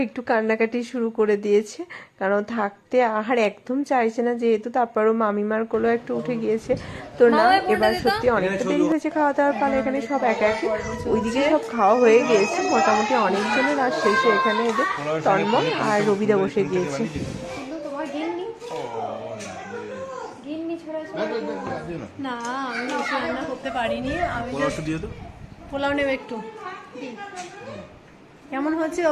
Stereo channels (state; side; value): identical; both; correlation 1.00